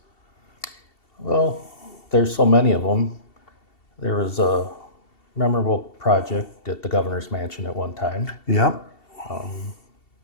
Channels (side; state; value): right; late; 2.7 ms